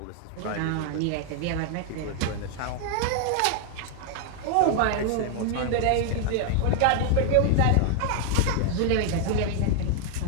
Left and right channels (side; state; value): both; different; correlation 0.00